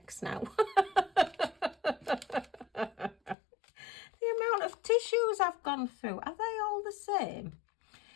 now. The amount of tissues I've gone through, are they all the same?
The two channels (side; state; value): right; drops out; at 3.4 s